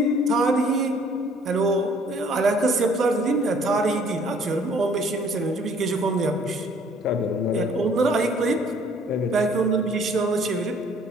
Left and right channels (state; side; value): normal; both; correlation 0.58